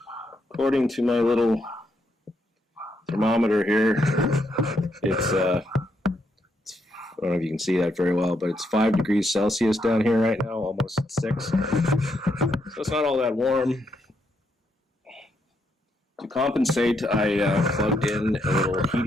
according to my little thermometer here, it's I don't know if you can see that very well, but it's 5 degrees Celsius down here right now, almost 6. So it's not all that warm. To compensate, I plugged in a little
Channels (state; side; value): normal; both; correlation 0.77